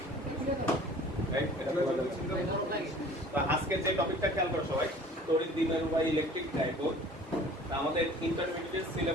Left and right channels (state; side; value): normal; both; correlation 0.47